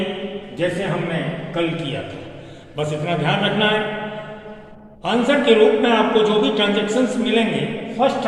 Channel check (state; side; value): identical; both; correlation 1.00